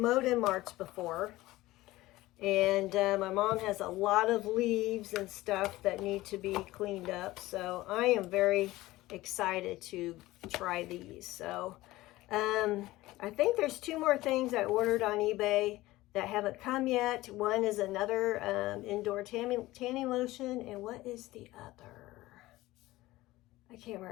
in March before, and my mom has a lot of leaves and stuff that need to be cleaned up. So I am very excited to try these. So I think there's 2 more things I ordered on eBay that haven't come yet. One is another indoor tanning lotion, and what is the other? I can't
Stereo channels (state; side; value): quieter; right; 18.0 dB